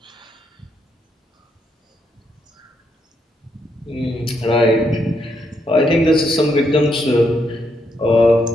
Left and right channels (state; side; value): normal; both; correlation 0.77